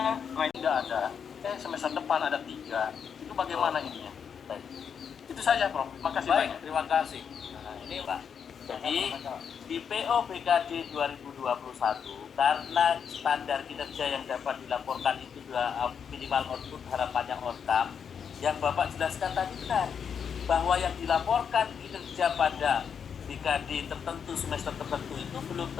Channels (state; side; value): quieter; right; 7.2 dB